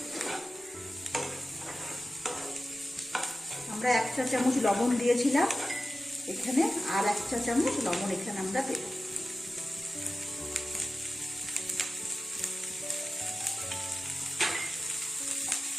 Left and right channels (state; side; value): normal; both; correlation 0.95